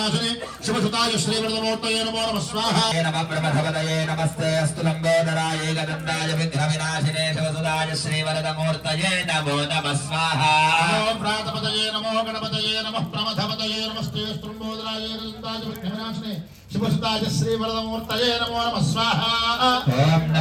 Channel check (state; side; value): identical; both; correlation 1.00